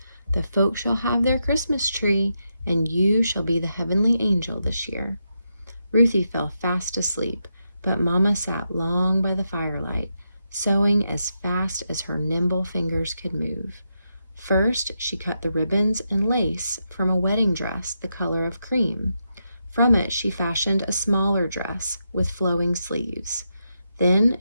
"The folk shall have their Christmas tree, and you shall be the heavenly angel this year." Ruthie fell fast asleep, but Mama sat long by the firelight, sewing as fast as her nimble fingers could move. First, she cut the ribbons and lace from a wedding dress the color of cream. From it, she fashioned a smaller dress with flowing sleeves. Then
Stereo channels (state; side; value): inverted; both; correlation -0.84